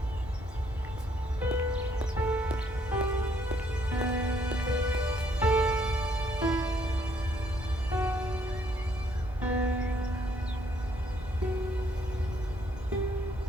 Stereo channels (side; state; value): both; normal; correlation 0.68